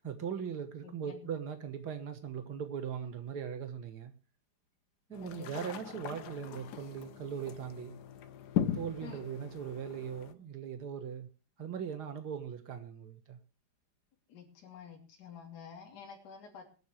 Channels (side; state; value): right; late; 4.9 ms